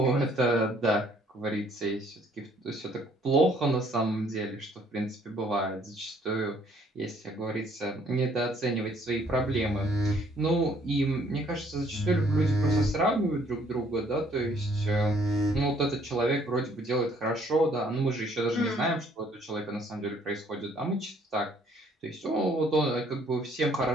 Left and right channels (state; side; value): normal; both; correlation 0.62